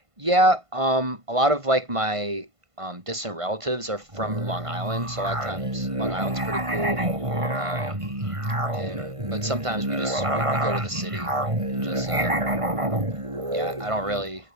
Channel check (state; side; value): late; left; 1.5 ms